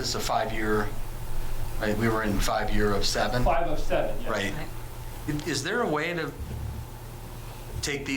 is a 5-year, right? We were in 5 year of 7. 5 of 7, yes. Right. Is there a way to take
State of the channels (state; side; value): identical; both; correlation 1.00